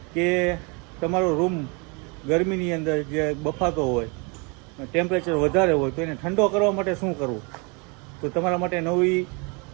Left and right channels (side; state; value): left; quieter; 31.4 dB